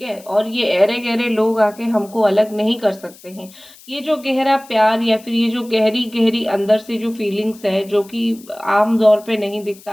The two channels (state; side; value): noise; left; hiss, 23 dB below the sound